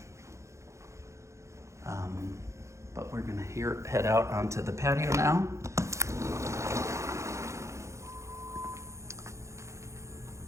But we're gonna head out onto the patio now.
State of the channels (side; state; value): left; late; 0.14 ms